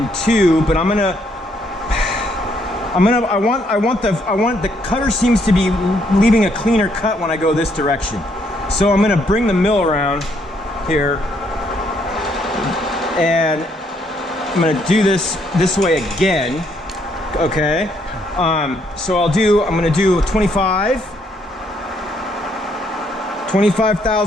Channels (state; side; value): normal; both; correlation 0.71